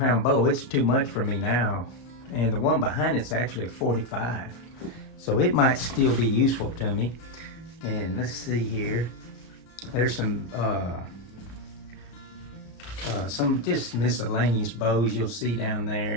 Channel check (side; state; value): right; late; 33 ms